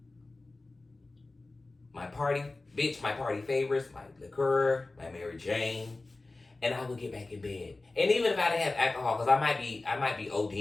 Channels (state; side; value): quieter; right; 3.2 dB